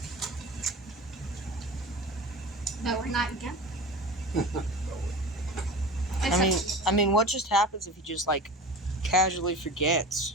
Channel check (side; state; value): both; normal; correlation 0.34